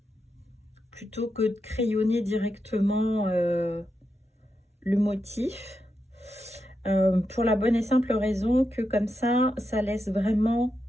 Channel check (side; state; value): both; normal; correlation 0.86